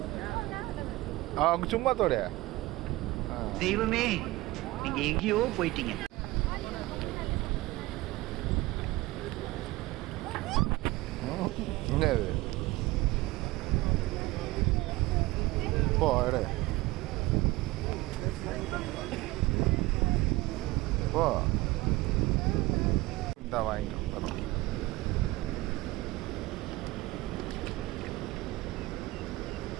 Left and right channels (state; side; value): quieter; left; 19.7 dB